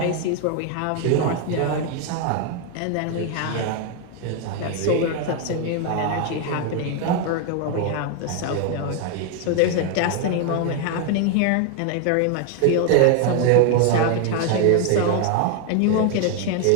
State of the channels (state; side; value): different; both; correlation 0.01